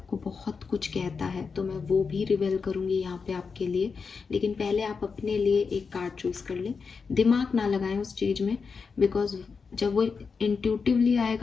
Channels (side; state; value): right; quieter; 5.2 dB